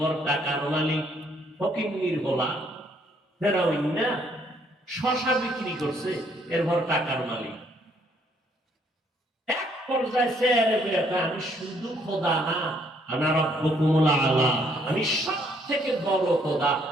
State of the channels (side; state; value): both; normal; correlation 0.67